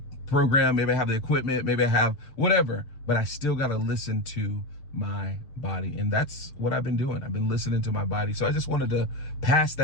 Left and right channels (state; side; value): late; right; 6.8 ms